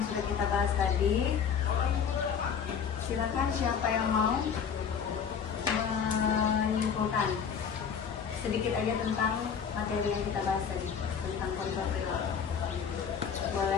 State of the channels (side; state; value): right; quieter; 7.1 dB